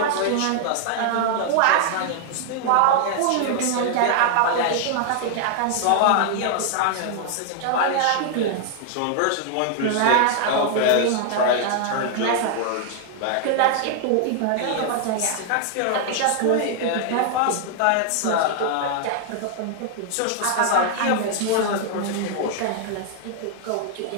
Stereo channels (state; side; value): different; both; correlation 0.00